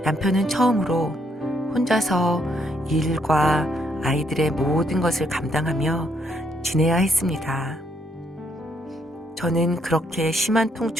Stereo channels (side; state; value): both; normal; correlation 0.72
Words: 남편은 처음으로 혼자서 일과 아이들의 모든 것을 감당하며 지내야 했습니다. 저는 그렇게 심한